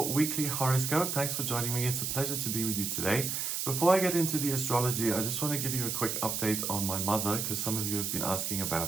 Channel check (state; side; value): noise; right; hiss, 1 dB below the sound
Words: weekly horoscope. Thanks for joining me. It's a pleasure to be with you today. Before I get into the astrology, I just want to give you a quick update on my mother because some of you have been asking